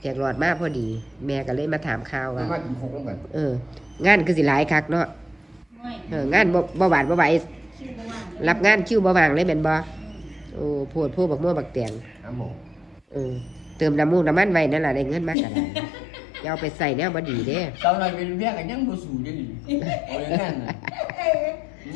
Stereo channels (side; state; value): right; drops out; at 15.4 s